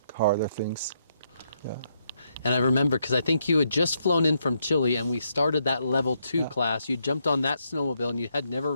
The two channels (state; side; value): inverted; both; correlation -0.77